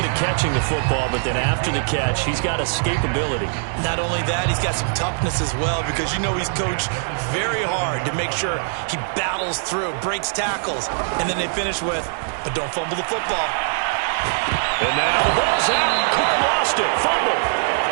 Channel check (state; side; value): silent; left; digital silence